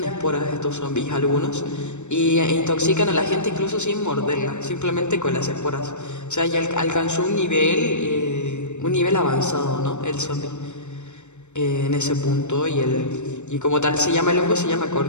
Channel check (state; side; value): late; right; 0.83 ms